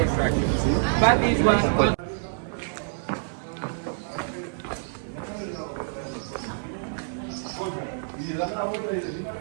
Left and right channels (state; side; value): silent; left; 60 dB below the other